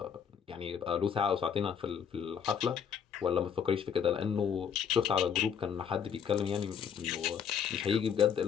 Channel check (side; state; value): right; quieter; 7.6 dB